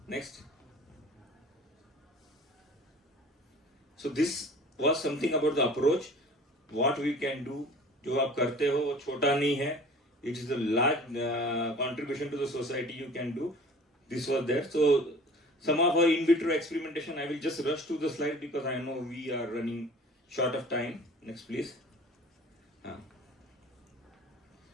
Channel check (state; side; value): normal; both; correlation 0.45